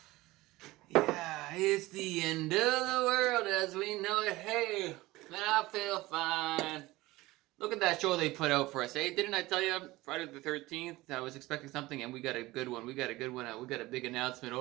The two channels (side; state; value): left; quieter; 19.3 dB